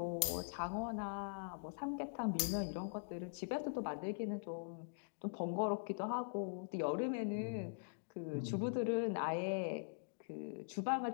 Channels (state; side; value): silent; right; digital silence